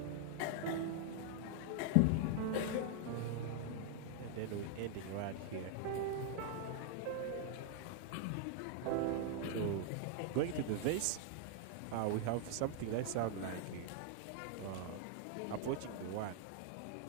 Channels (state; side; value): different; both; correlation 0.00